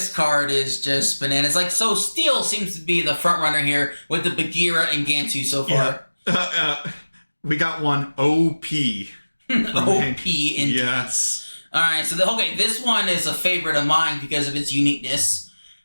card is just bananas. Like, so Steel seems to be the front runner here with the Bagheera and Gantu so far. We got one OP. OP indeed. Yes. Alright, so this one is a favorite of mine because of its uniqueness.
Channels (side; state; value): both; inverted; correlation -1.00